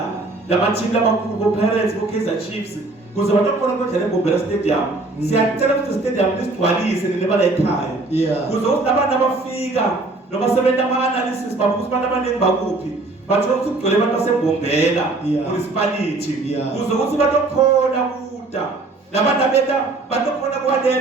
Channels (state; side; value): quieter; left; 3.2 dB